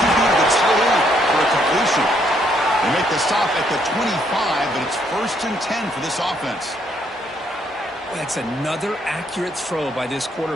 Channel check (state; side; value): normal; both; correlation 0.71